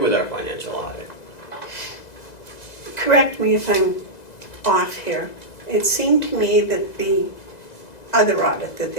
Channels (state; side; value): late; right; 2.0 ms